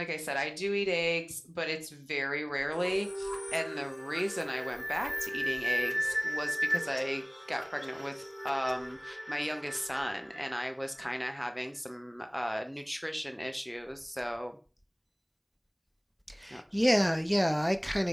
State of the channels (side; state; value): both; identical; correlation 1.00